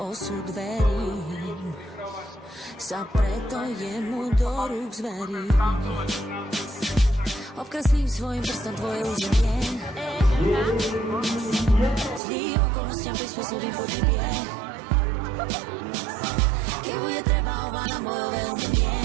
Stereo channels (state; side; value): drops out; left; at 12.2 s